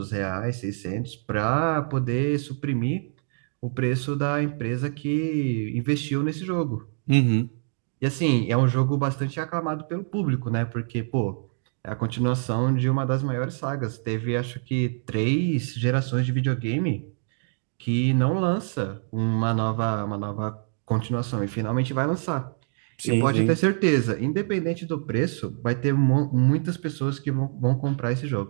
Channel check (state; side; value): silent; left; digital silence